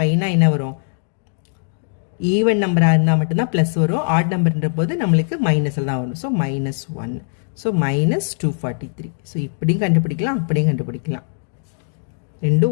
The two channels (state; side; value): silent; right; digital silence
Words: 5னா என்ன வரும்? ஈவன் நம்பராக இருந்தால் மட்டும்தான் ப்ளஸ் வரும். ஆட் நம்பர்ன்ற போது நம்மளுக்கு மைனஸில் தான் வரும். So minus 1. So minus 243. So இப்படியும் கண்டுபிடிக்கலாம், அப்படியும் கண்டுபிடிக்கலாம்.